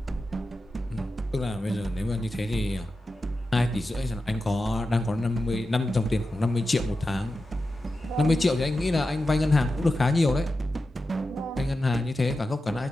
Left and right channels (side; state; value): both; normal; correlation 0.91